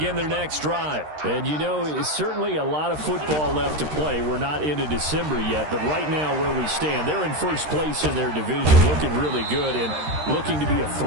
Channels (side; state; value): left; late; 13 ms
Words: their next drive. And, you know, it's certainly a lot of football left to play. We're not into December yet, but right now where we stand, they're in first place in their division, looking really good and looking to be a